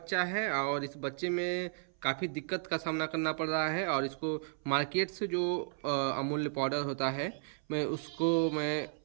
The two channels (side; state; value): left; silent; 55 dB below the other